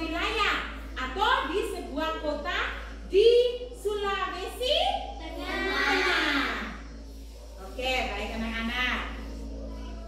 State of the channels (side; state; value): both; identical; correlation 1.00